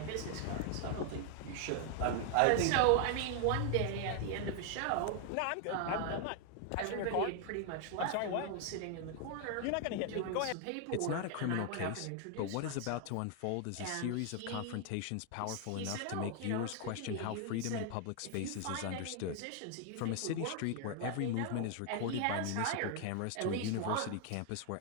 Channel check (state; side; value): different; both; correlation 0.00